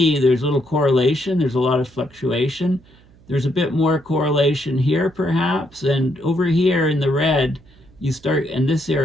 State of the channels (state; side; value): noise; right; hum, 27 dB below the sound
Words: there's little correlation, there's a lot of fluctuation. There's a bit more correlation here perhaps, and over here in the red, in this